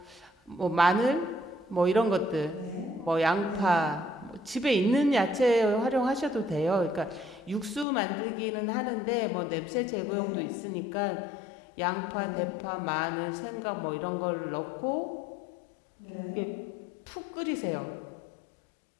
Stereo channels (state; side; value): drops out; right; at 7.9 s